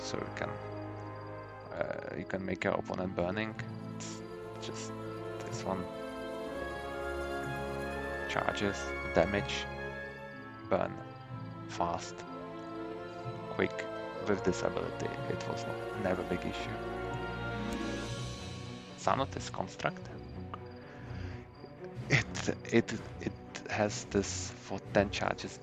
so you can make your opponent burning. It's just this one. Charges, damage, burn, fast, quick. With this ability, it was never a big issue. Sanotis Construct. It has this for 10 charges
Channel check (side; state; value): both; identical; correlation 1.00